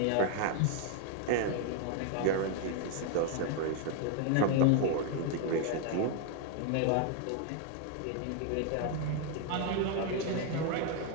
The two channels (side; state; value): both; different; correlation 0.00